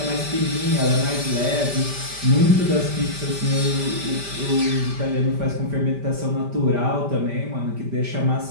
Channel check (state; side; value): late; left; 5.1 ms